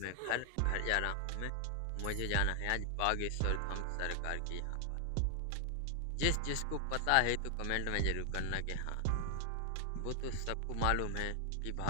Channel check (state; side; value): different; both; correlation 0.00